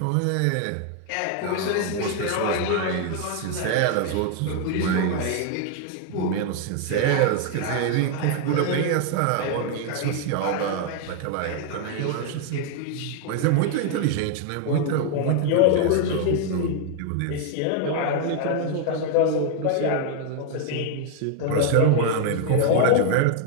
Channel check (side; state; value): both; different; correlation 0.00